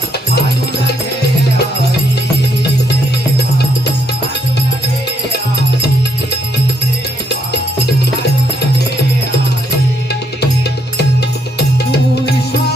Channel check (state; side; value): normal; both; correlation 0.75